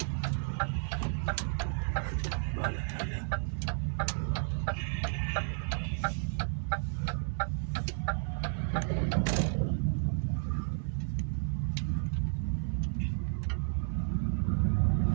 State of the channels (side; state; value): left; silent; digital silence